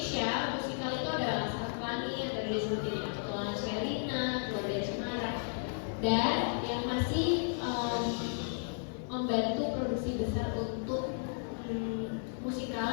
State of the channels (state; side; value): silent; right; 55 dB below the other